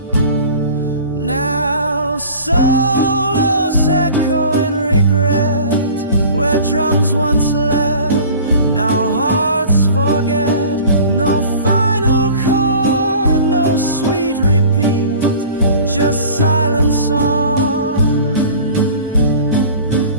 Now solos echo in regret where drums once led. Now hearts forget. No final chord, no sweet repeat, just silence on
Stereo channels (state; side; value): inverted; both; correlation -0.43